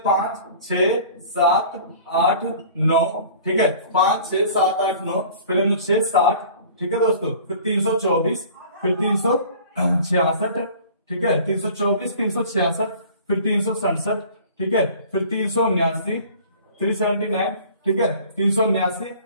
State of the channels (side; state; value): both; inverted; correlation -0.46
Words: 5, 6, 7, 8, 9, ठीक है, 5, 6, 7, 8, 9, फिर अनुच्छेद 60, ठीक है दोस्तों, फिर 324, फिर 366, ठीक है, 324, 366, फिर 367, ठीक है, फिर 379, 379, ठीक है, 379,